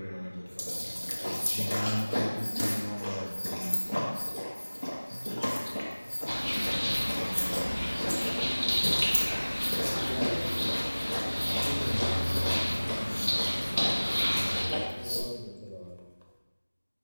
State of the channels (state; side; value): inverted; both; correlation -1.00